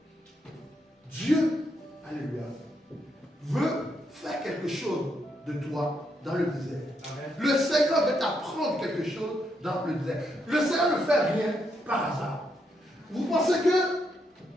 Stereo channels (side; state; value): both; normal; correlation 0.79